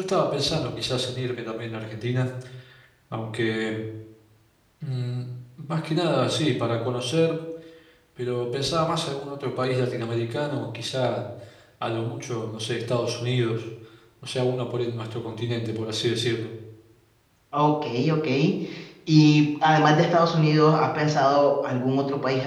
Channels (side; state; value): both; identical; correlation 1.00